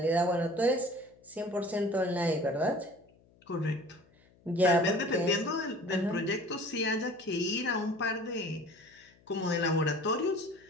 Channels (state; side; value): noise; left; hum, 30 dB below the sound